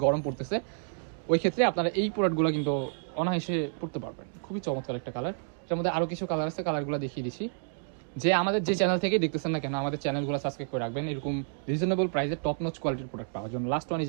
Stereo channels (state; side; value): silent; left; digital silence